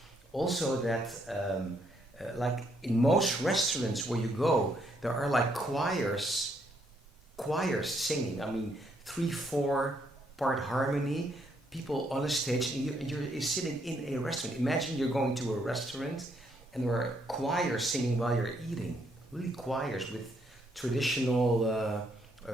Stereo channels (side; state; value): both; normal; correlation 0.72